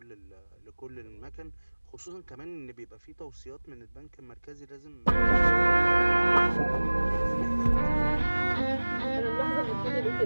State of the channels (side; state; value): both; inverted; correlation -1.00